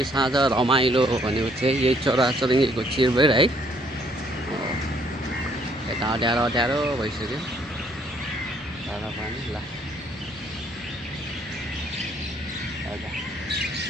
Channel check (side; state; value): both; normal; correlation 0.66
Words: साँझ रमाइलो भनेको चाहिँ यही चराचुरुङ्गीको चिरबिर है। यता अँध्यारो भइसक्यो तर पनि ल